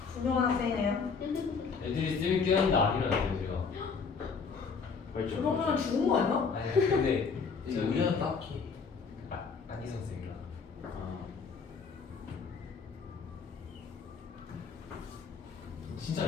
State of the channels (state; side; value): quieter; right; 5.3 dB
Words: 훌륭한 학생이네요. 애들이 쌤이 깨웠는데 안 일어났어요 제가. 그 정도면 죽은 거 아니야? 아니 근데 이제 의견은 딱히 안희 선생이랑. 진짜 안